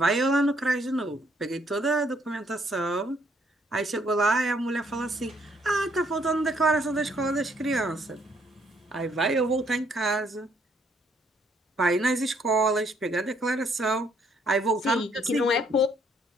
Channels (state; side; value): normal; both; correlation 0.68